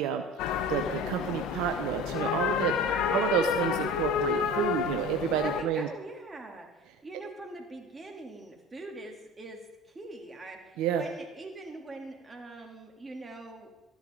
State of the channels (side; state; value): both; normal; correlation 0.35